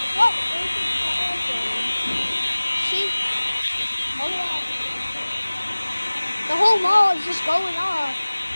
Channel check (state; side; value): inverted; both; correlation -1.00